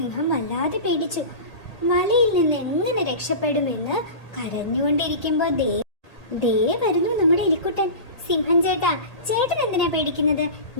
വല്ലാതെ പേടിച്ചു. വലയിൽ നിന്ന് എങ്ങനെ രക്ഷപ്പെടുമെന്ന് കരഞ്ഞുകൊണ്ടിരിക്കുമ്പോ ദേ വരുന്നു നമ്മുടെ എലിക്കുട്ടൻ. സിംഹം ചേട്ടൻ എന്തിനാ പേടിക്കുന്നത്?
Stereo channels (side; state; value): right; late; 1.8 ms